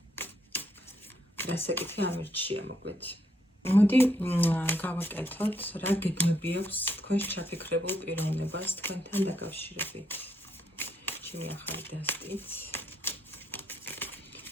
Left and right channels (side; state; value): both; normal; correlation 0.75